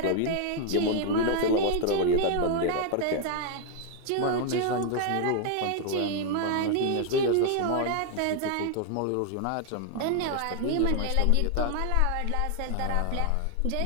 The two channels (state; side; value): different; both; correlation 0.00